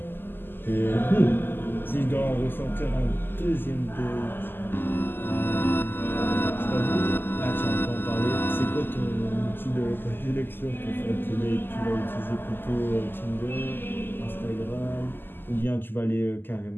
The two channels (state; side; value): late; right; 0.097 ms